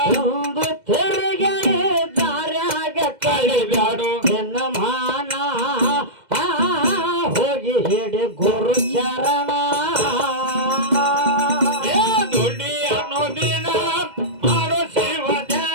ಒಂದು ತಿರುಗಿ ದಾರ್ಯಾಗ ಕಳಿಬ್ಯಾಡು ದಿನಮಾನ ಹೋಗಿ ಹಿಡಿ ಗುರು ಚರಣ ಏ ದುಡಿ ಅನ್ನೋದಿನ ಮಾಡೋ ಶಿವ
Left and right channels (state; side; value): late; left; 2.0 ms